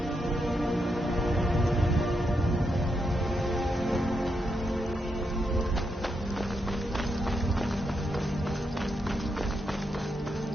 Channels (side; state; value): both; normal; correlation 0.82